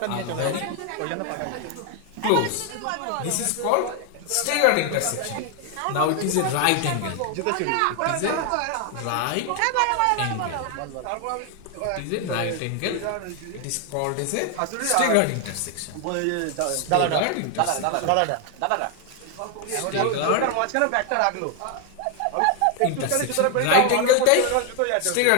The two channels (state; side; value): different; both; correlation 0.01